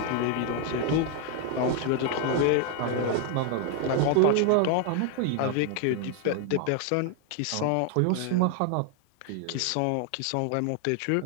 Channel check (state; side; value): different; both; correlation 0.00